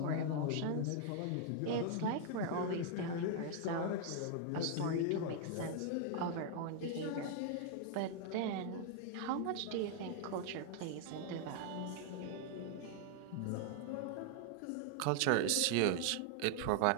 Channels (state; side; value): different; both; correlation 0.00